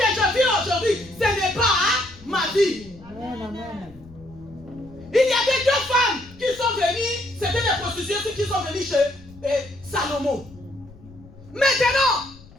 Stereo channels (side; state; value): left; noise; rumble, 22 dB below the sound